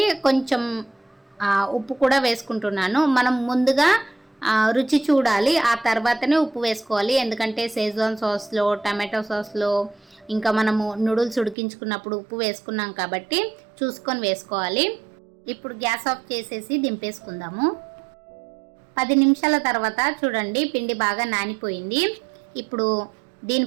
కొంచెం ఉప్పు కూడా వేసుకుంటున్నాను. మనం ముందుగా రుచి చూడాలి, ఆ తర్వాతనే ఉప్పు వేసుకోవాలి. ఎందుకంటే షేజ్వాన్ సాస్లో, టమాటో సాస్లో, ఇంకా మనము నూడిల్స్ ఉడికించుకున్నప్పుడు ఉప్పు వేసుకున్నాం కాబట్టి చూసుకొని వేసుకోవాలి. ఇప్పుడు గ్యాస్ ఆఫ్ చేసేసి దింపేసుకుందాము. 10 నిమిషాల తర్వాత చూడండి, పిండి బాగా నానిపోయింది. ఇప్పుడు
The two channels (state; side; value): drops out; left; at 11.6 s